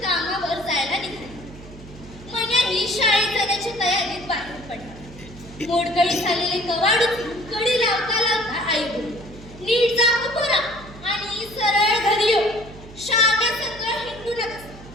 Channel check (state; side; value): noise; right; hum, 18 dB below the sound